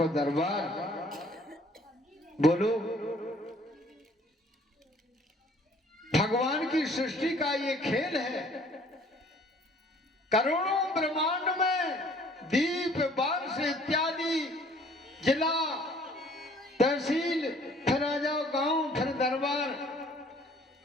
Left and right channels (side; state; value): both; normal; correlation 0.57